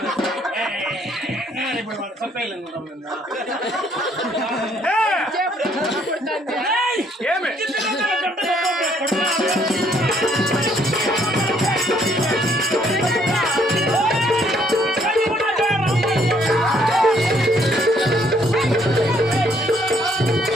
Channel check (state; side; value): normal; both; correlation 0.66